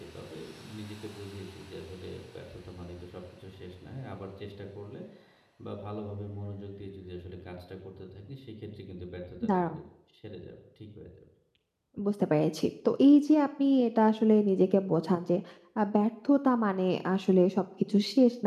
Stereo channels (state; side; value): identical; both; correlation 1.00